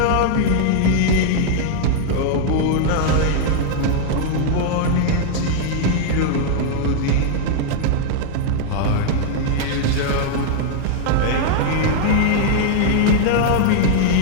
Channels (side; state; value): both; different; correlation -0.01